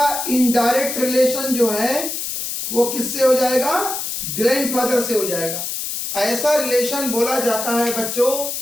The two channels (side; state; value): left; noise; hiss, 4 dB below the sound